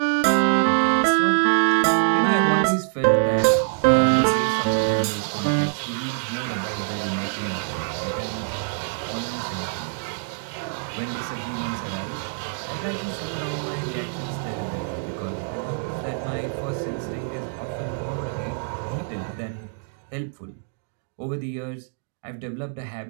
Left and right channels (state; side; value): silent; left; digital silence